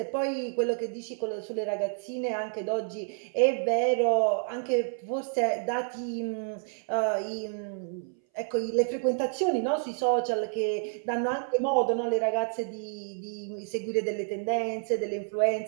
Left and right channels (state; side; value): silent; left; 58 dB below the other